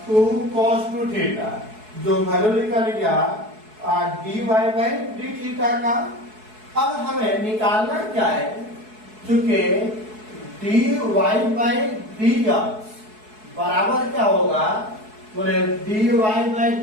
2 cos 2 theta, जो वैल्यू निकल गया dy बाई डी थीटा का। अब हमें निकालना क्या है, चूंकि dy बाई dx बराबर क्या होगा, बोले dy बाई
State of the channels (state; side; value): late; left; 4.7 ms